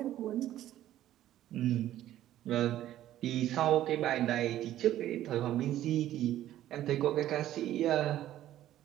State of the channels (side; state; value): left; quieter; 13.0 dB